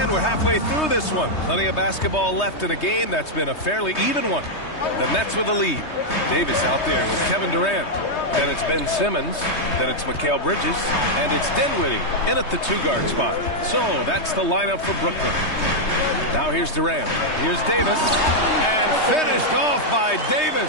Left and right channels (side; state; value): right; late; 3.2 ms